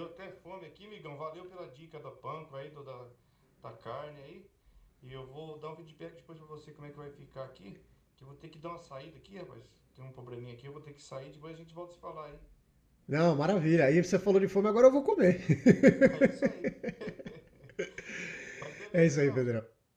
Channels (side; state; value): both; identical; correlation 1.00